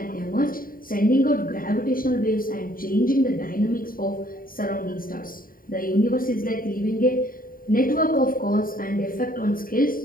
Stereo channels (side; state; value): right; late; 0.41 ms